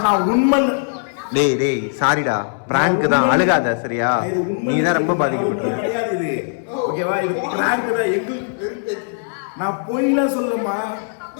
நான் உண்மை. டேய் டேய் சாரிடா, பிராங்க் தான், அழுகாத சரியா? நீ தான் ரொம்ப பாதிக்கப்பட்ட. கிடையாது இது. ஓகேவா? இது பிராங்க் தான். எங்களுக்கு நான் பொய்லாம் சொல்லமா.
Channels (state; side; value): silent; right; digital silence